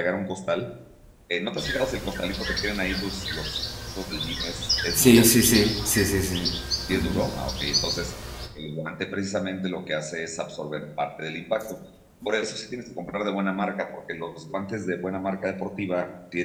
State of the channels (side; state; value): both; identical; correlation 1.00